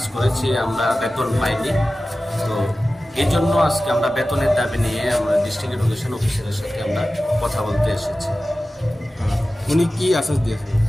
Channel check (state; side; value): normal; both; correlation 0.95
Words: করেছি আমরা বেতন পাইনি। তো এই জন্য আজকে আমরা বেতনের দাবি নিয়ে আমরা ডিস্ট্রিক্ট এডুকেশন অফিসারের সাথে আমরা কথা বলতে এসেছি। উনি কি আশ্বাস দিয়েছেন?